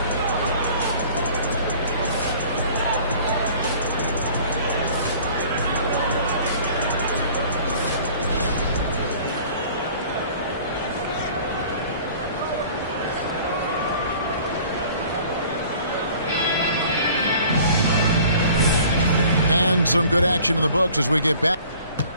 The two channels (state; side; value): inverted; both; correlation -0.49